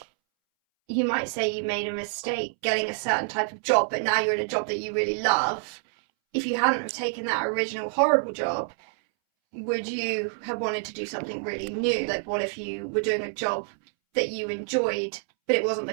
you might say you made a mistake getting a certain type of job, but now you're in a job that you really love. If you hadn't have taken that original horrible job, would you have wanted to do something really new? Like, what if you were doing a job that you enjoyed, but it wasn't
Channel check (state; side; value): silent; left; 60 dB below the other